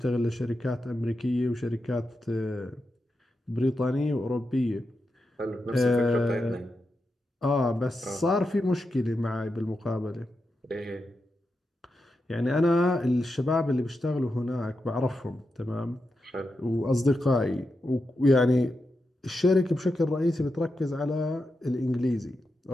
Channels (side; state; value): both; normal; correlation 0.88